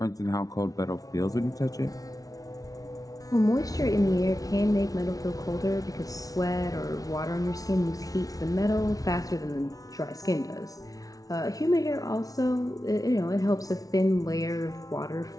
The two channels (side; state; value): right; late; 0.18 ms